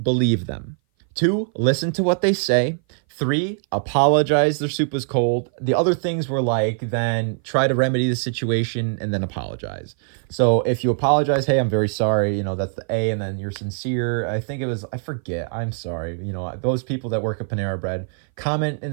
believe them. 2, listen to what they say. 3, apologize their soup was cold. The other things were like, then try to remedy the situation and then apologize. So if you apologize, hey, I'm very sorry, that's the A, and then you're sincere. I think it was, I forget, I'm sorry. Those people that work at Panera Bread, comment in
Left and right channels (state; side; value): silent; left; 58 dB below the other